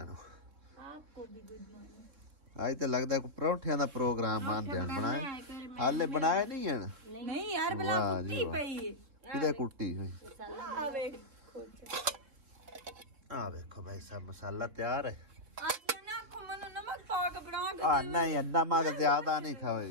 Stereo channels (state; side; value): late; left; 3.5 ms